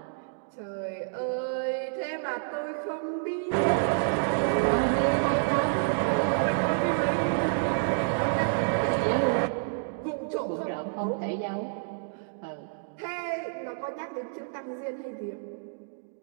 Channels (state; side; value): silent; left; digital silence